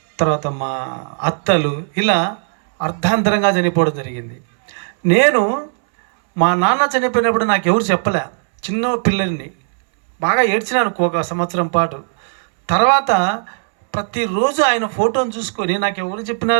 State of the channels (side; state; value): left; silent; 67 dB below the other